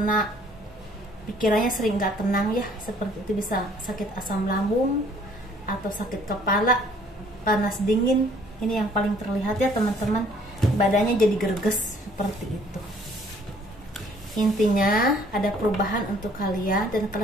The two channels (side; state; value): both; normal; correlation 0.59